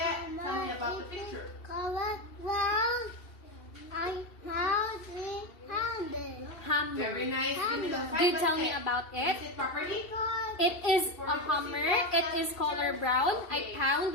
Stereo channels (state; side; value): late; right; 2.7 ms